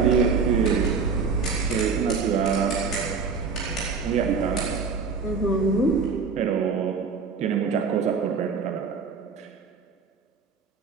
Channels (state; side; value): quieter; left; 5.1 dB